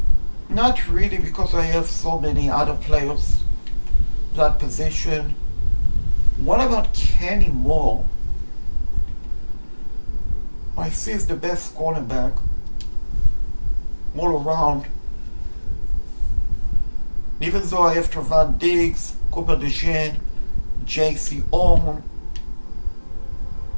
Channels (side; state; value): both; inverted; correlation -1.00